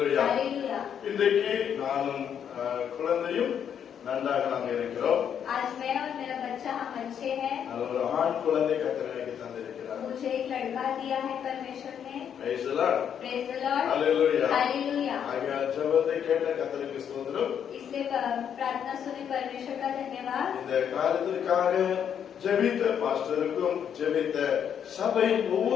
Hallelujah. இன்றைக்கு நானும் குழந்தையும் நன்றாக நாங்கள் இருக்கிறோம். आज मैं और मेरा बच्चा हम अच्छे हैं நல்ல ஒரு ஆண் குழந்தை கர்த்தர் எனக்கு தந்திருக்கிறார். मुझे एक लड़का दिया है परमेश्वर ने Praise the Lord. Praise the Lord. Hallelujah. Hallelujah. ஆகையால் ஜெபத்தை கேட்ட கர்த்தருக்கு ஸ்தோத்திரம். इसलिए प्रार्थना सुने परमेश्वर का धन्यवाद இந்த காரியத்திற்காக ஜெபித்த பாஸ்டருக்கும் ஜெபித்த சபையின்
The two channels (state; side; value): quieter; right; 8.5 dB